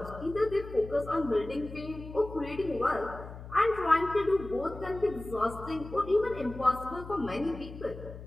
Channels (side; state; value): left; noise; hum, 13 dB below the sound